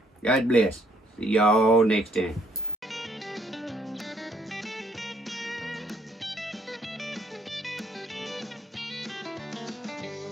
God bless. See y'all next time.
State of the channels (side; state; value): both; normal; correlation 0.65